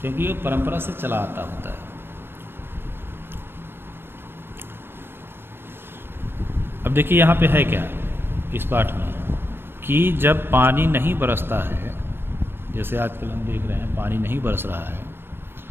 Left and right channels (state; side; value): late; left; 0.11 ms